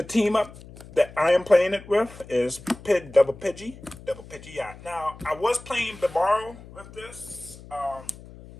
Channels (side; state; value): left; noise; hum, 18 dB below the sound